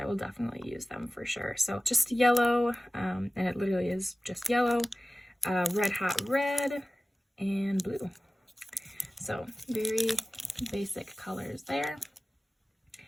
will definitely use them for sure. So just yellow, and it literally is just yellow, red hot red, and blue. So very basic colors there.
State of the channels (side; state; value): both; normal; correlation 0.97